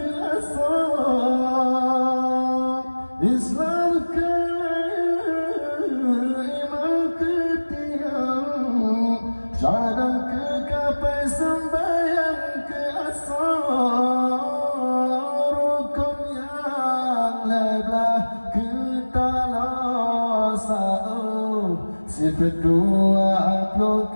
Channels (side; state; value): both; inverted; correlation -1.00